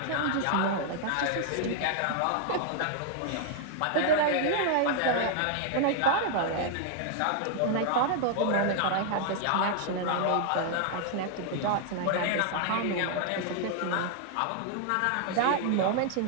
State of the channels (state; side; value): different; both; correlation 0.00